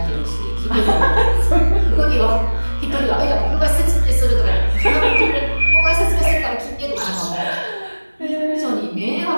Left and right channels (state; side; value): inverted; both; correlation -1.00